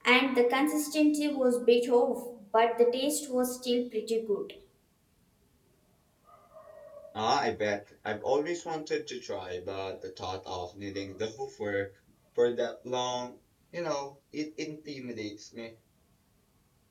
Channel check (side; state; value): both; identical; correlation 1.00